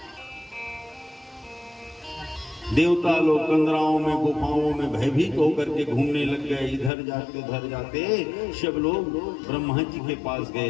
देवता लोग कंदराओं में गुफाओं में भयभीत होकर के घूमने लग गए, इधर जाते उधर जाते। सब लोग ब्रह्मा जी के पास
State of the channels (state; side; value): drops out; right; at 6.9 s